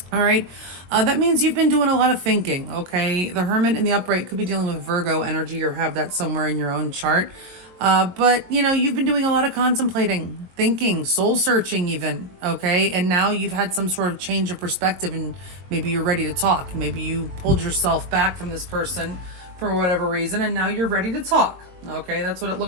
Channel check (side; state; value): left; late; 22 ms